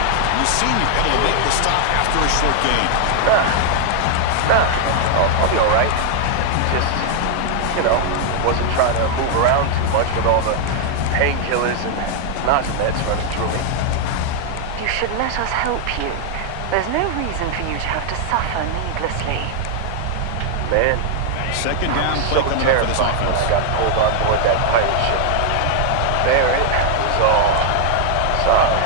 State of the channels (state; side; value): different; both; correlation 0.00